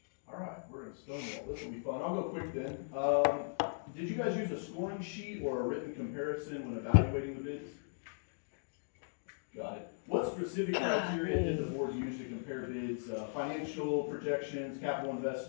All right, we're gonna stonewall, this will be fun, I'll go quick then. Did you guys use a scoring sheet or a written comparison when evaluating the bids? Got it. What specific criteria did the board use to compare bids? Financial projections, capital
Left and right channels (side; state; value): right; silent; digital silence